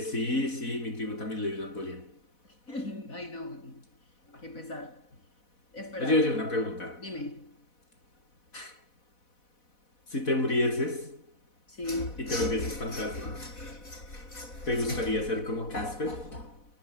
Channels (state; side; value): late; right; 4.1 ms